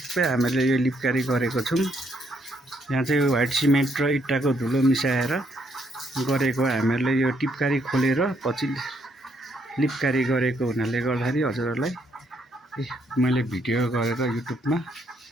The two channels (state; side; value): normal; both; correlation 0.72